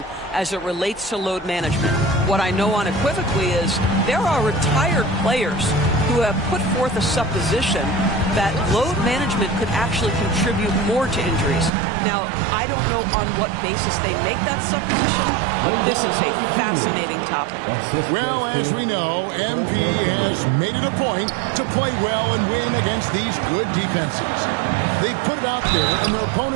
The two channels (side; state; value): left; drops out; at 11.7 s